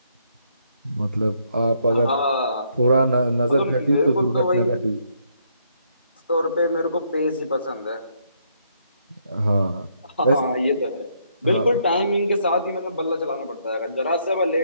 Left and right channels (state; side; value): inverted; both; correlation -0.72